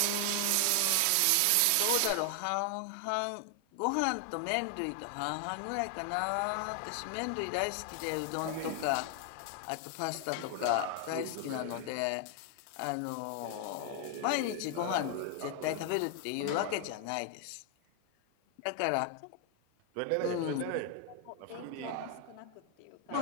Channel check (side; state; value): both; different; correlation 0.00